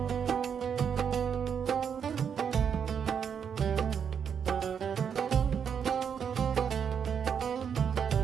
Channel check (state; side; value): quieter; left; 7.4 dB